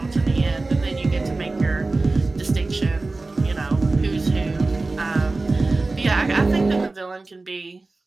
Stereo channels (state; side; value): quieter; left; 3.3 dB